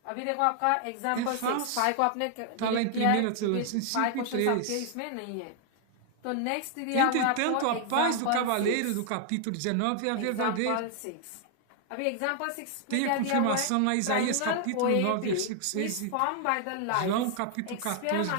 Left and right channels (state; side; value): different; both; correlation 0.00